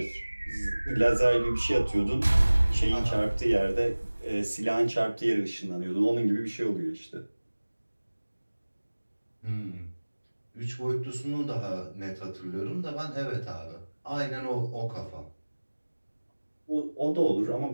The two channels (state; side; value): inverted; both; correlation -1.00